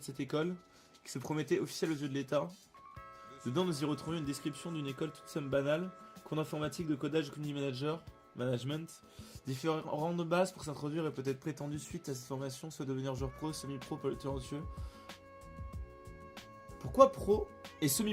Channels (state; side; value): identical; both; correlation 1.00